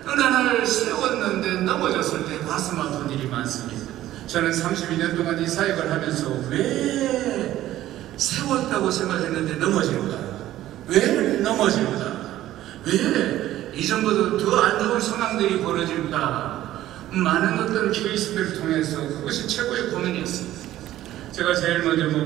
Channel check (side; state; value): left; quieter; 14.0 dB